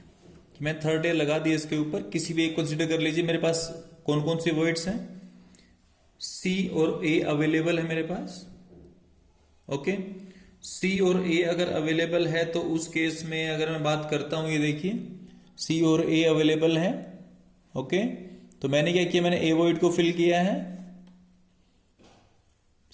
मैं थर्ड लेयर लगा दिया इसके ऊपर, किसी भी एक कंसीडर कर लीजिए। मेरे पास कौन कौन सी वॉइड्स हैं, सी और ए अवेलेबल है मेरे पास। ओके, सी और ए अगर अवेलेबल है तो उस केस में अगर मैं बात करता हूं, ये देखिए सी और ए अवेलेबल है। ओके, तो मैंने क्या किया, मैंने ए वॉइड को फिल किया है,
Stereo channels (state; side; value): identical; both; correlation 1.00